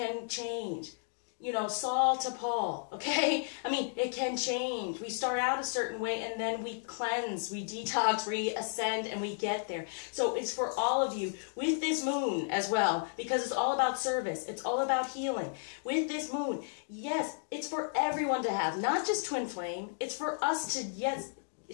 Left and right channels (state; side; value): silent; right; digital silence